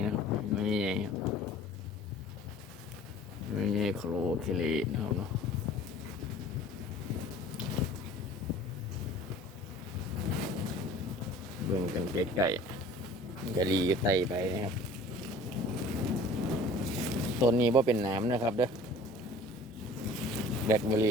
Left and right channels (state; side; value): normal; both; correlation 0.46